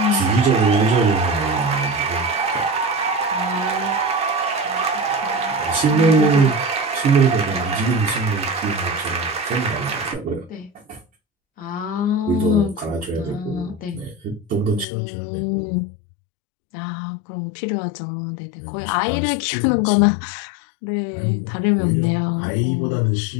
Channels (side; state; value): right; drops out; at 14.9 s